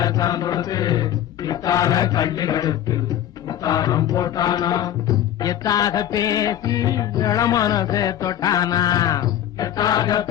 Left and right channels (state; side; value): quieter; right; 11.4 dB